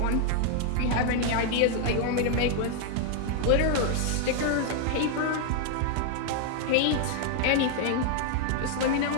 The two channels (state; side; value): different; both; correlation 0.00